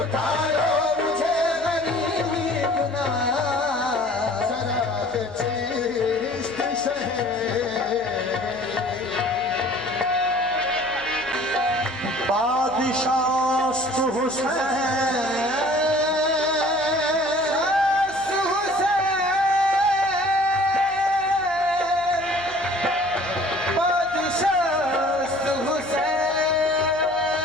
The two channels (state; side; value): noise; left; hum, 23 dB below the sound